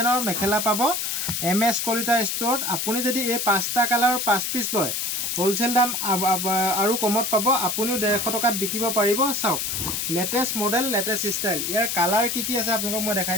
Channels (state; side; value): noise; left; hiss, 1 dB below the sound